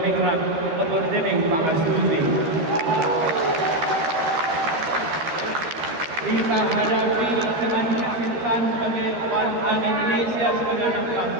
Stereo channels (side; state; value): left; late; 13 ms